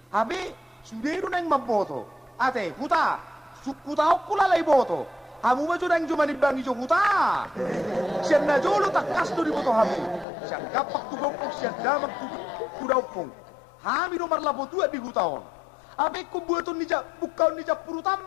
HP suderu nang maboto. Ate, huta. Sukuta okula lay boto. Hamu ba jurang cuma dibangi jo huta. Siyan na jolo takas do di boto hamu. Siyan kapak tu gopok siyan damak tu kudaupong. Hami no marlabo tua di hutaon. Abe ko buaton ni bukaon ni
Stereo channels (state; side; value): drops out; right; at 10.2 s